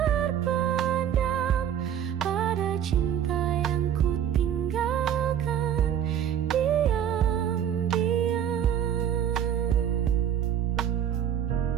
pada cinta yang ku tinggalkan diam-diam.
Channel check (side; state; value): left; quieter; 9.5 dB